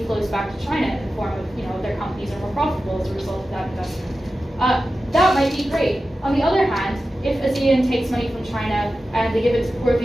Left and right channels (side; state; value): both; normal; correlation 0.93